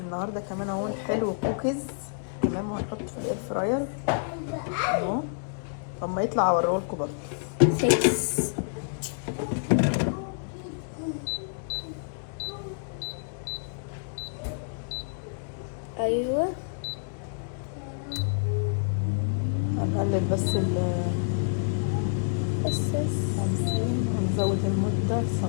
كمان اهو. حلو كوكيز. تمام. وهنحط في الاير فراير اهو. لما يطلع اوريهولكم برضه. 6 ايوه هنقلب بس نزود المدة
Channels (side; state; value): right; silent; digital silence